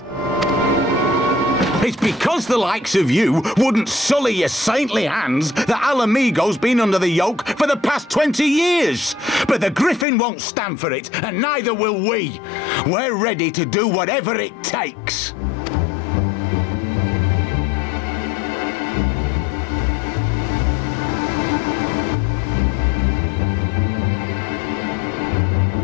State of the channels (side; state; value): right; drops out; at 10.1 s